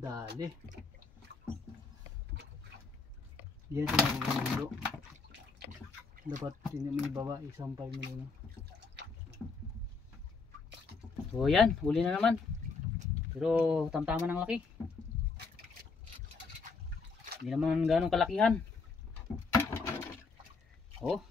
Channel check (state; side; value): quieter; right; 4.5 dB